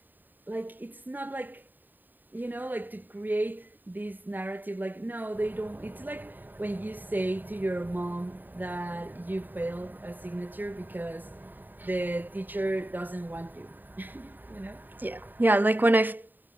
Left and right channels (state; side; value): late; left; 0.090 ms